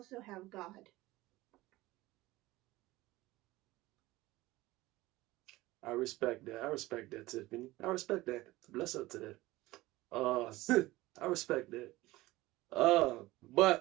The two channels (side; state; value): left; quieter; 18.8 dB